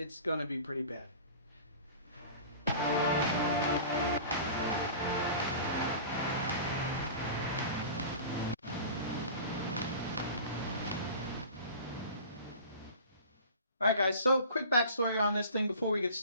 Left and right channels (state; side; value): inverted; both; correlation -0.39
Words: going to be pretty bad. Alright guys, so quick backstory on this thing before we get